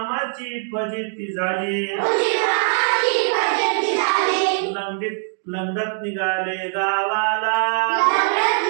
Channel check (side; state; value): left; silent; 61 dB below the other